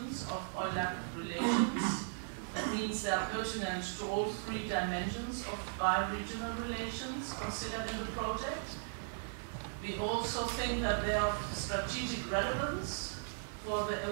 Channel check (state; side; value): silent; left; 53 dB below the other